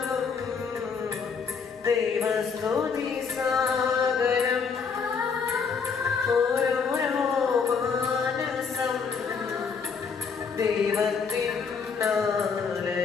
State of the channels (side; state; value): right; quieter; 5.7 dB